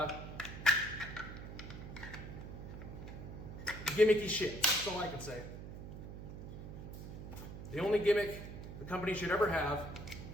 gimmicky shit. That's all I can say. The only gimmick the company should ever have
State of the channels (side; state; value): right; noise; hum, 10 dB below the sound